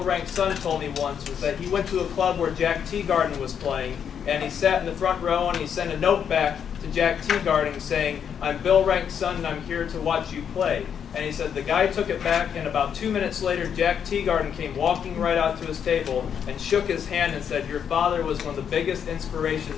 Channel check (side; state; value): right; quieter; 8.0 dB